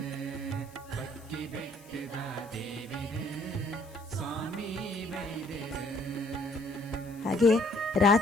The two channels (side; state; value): left; noise; hiss, 24 dB below the sound